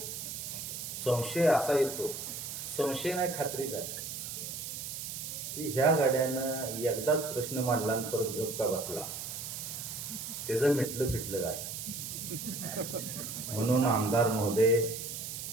संशय असा येतो, संशय नाही खात्रीच आहे की ह्या गाड्यानं एकदाच प्रश्न मांडला आणि परत गप्पा बसला, त्याचं मिटलं फिटलं काय. म्हणून आमदार महोदय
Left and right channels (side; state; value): right; noise; hiss, 6 dB below the sound